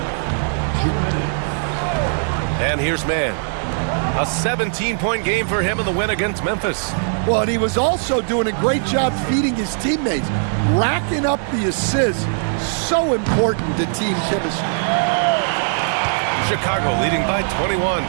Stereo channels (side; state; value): left; silent; digital silence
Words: And here's man. A 17-point game for him in the win against Memphis. Well, and he was also doing a great job feeding his teammates, racking up the assists. So important to team chemistry. Chicago leading by 21.